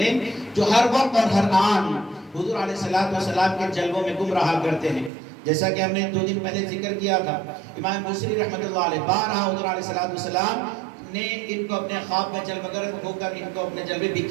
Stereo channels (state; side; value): drops out; left; at 5.1 s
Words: جو ہر وقت اور ہر آن حضور علیہ السلام کے جلووں میں گم رہا کرتے ہیں۔ جیسا کہ ہم نے 2 دن پہلے ذکر کیا تھا، امام بصری رحمۃ اللہ علیہ بارہا حضور علیہ السلام نے ان کو اپنے خواب میں جلوگر ہو کر ان کو اپنے جلوے